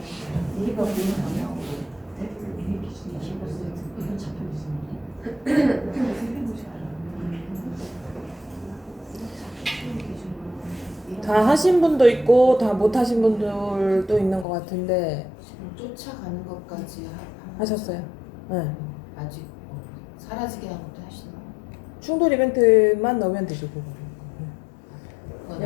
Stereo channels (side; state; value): right; drops out; at 14.5 s